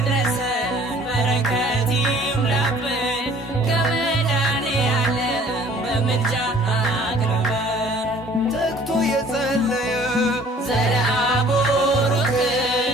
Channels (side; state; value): both; normal; correlation 0.53